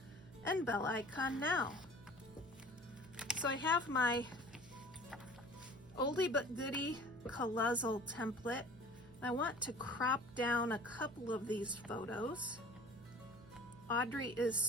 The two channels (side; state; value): right; noise; hum, 20 dB below the sound